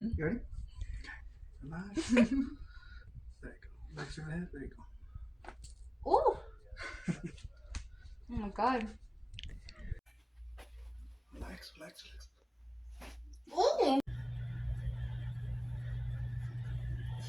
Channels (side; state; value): both; identical; correlation 1.00